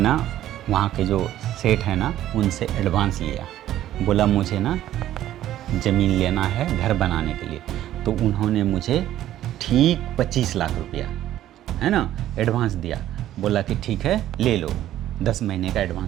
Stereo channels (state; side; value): quieter; left; 12.8 dB